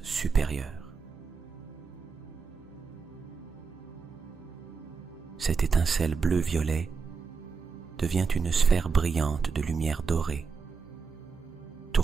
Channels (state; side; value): quieter; left; 5.2 dB